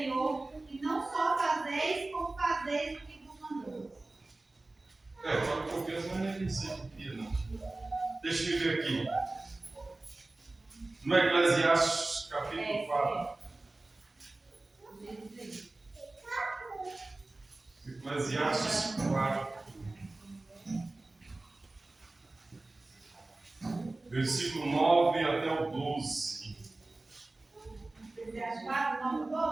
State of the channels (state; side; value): quieter; left; 3.0 dB